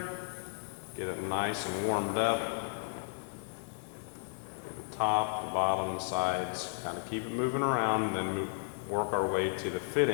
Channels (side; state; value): right; silent; digital silence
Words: get it nice and warmed up. The top, the bottom, the sides, kind of keep it moving around, and then work our way to the